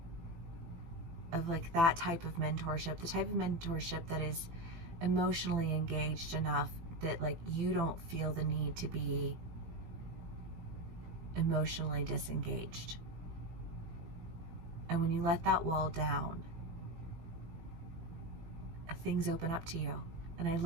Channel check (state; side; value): late; left; 18 ms